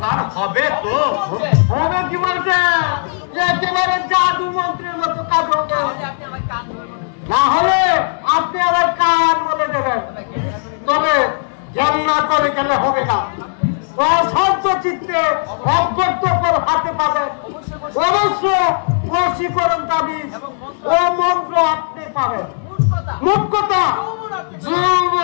আর হবে তো হবে কি বলছে, একেবারে জাদু মন্ত্রের মতো কাজ হবে, না হলে আপনি আবার কান বলে দেবেন। তবে জান্নাত করে গেলে হবে না, অশান্ত চিত্তে অজ্ঞত্বপর হাতে পাবেন, অবশ্য বশীকরণ তাবিজ ও মন্ত্র আপনি পাবেন। মুখ্য কথা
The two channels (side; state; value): right; silent; digital silence